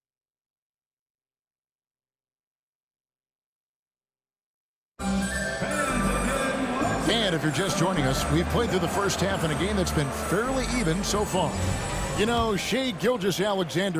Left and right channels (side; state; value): both; identical; correlation 1.00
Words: And if you're just joining us, we've played through the first half in a game that's been fairly even so far. You know, Shai